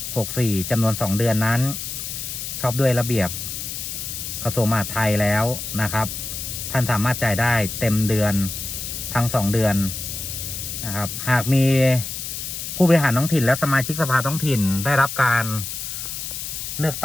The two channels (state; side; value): noise; left; hiss, 6 dB below the sound